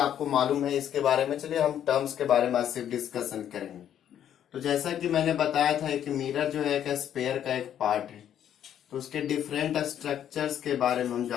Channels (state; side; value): quieter; right; 10.1 dB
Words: मालूम है इसके बारे में। चलिए हम टर्म्स के बारे में आज सिर्फ डिस्कशन करेंगे। तो जैसा कि मैंने बताया था कि मिरर जो है एक स्पेयर का एक पार्ट है, तो उसके डिफरेंट स्ट्रक्चर्स के बारे में हम